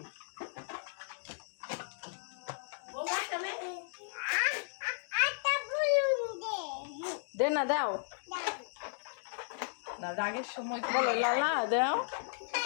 দে না দাও না রাগের সময় বলো লালা দাও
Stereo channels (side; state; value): right; silent; digital silence